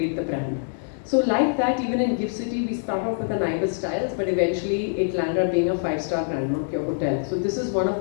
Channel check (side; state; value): right; silent; digital silence